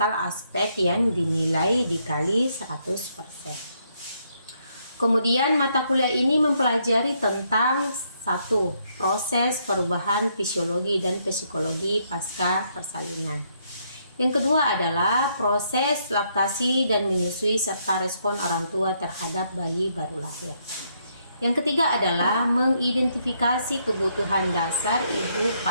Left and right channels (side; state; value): both; inverted; correlation -0.74